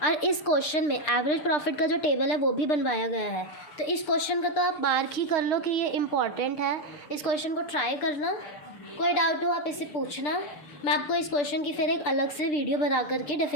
और इस क्वेश्चन में एवरेज प्रॉफिट का जो टेबल है वो भी बनवाया गया है। तो इस क्वेश्चन का तो आप मार्क ही कर लो कि ये इम्पॉर्टेंट है, इस क्वेश्चन को ट्राई करना। कोई डाउट हो आप इससे पूछना, मैं आपको इस क्वेश्चन की फिर एक अलग से वीडियो बना करके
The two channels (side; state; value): right; late; 6.7 ms